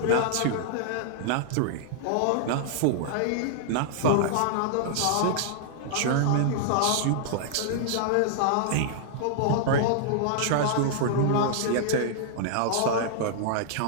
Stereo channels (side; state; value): both; different; correlation -0.01